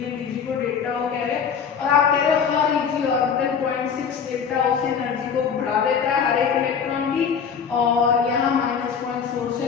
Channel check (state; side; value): quieter; right; 6.8 dB